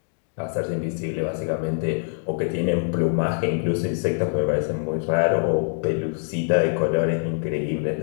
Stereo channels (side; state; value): right; silent; 60 dB below the other